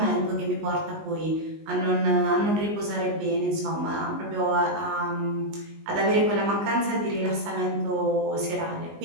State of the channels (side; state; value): left; late; 19 ms